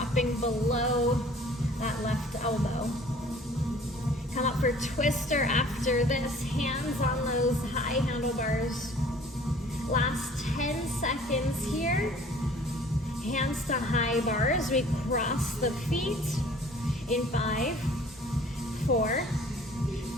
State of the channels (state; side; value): normal; both; correlation 0.51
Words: below that left elbow. Come up for twister after this, hands on those high handlebars. Last 10 seconds here. Hands to high bars. We cross the feet in 5, 4,